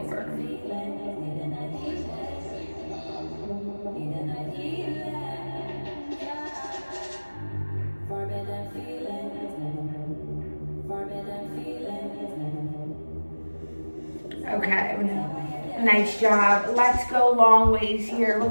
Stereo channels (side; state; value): both; inverted; correlation -1.00